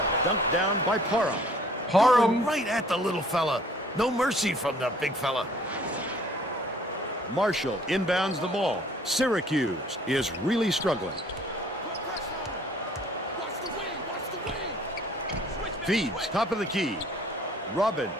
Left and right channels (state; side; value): normal; both; correlation 0.55